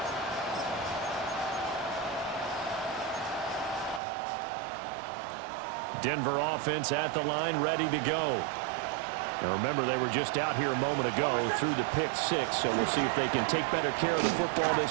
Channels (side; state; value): left; drops out; at 4.0 s